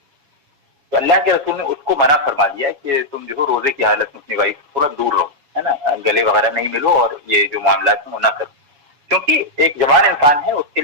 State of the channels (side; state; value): left; late; 7.1 ms